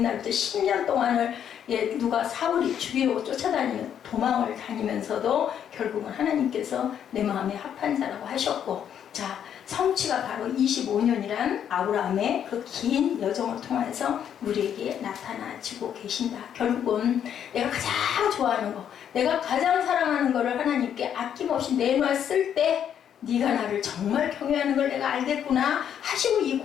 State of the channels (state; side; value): quieter; right; 9.1 dB